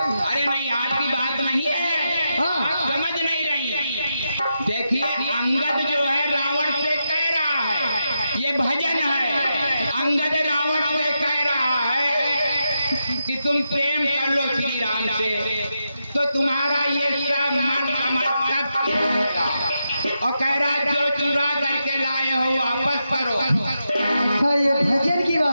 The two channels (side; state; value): both; inverted; correlation -0.86